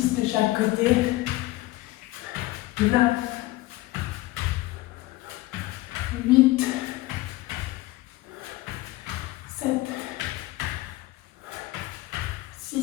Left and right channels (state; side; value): quieter; right; 18.7 dB